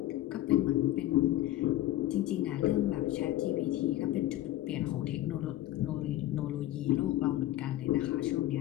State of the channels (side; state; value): right; quieter; 14.7 dB